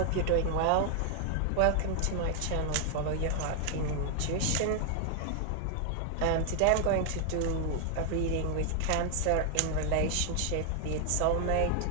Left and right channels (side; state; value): both; different; correlation 0.00